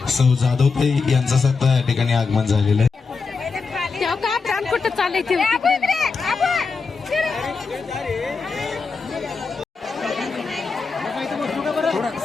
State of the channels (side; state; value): right; quieter; 4.7 dB